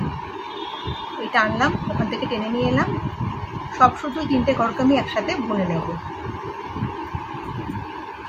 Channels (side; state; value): both; identical; correlation 1.00